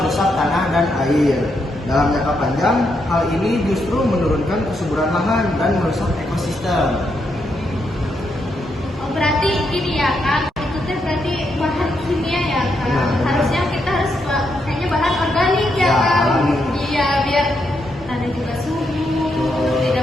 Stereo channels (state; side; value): normal; both; correlation 0.80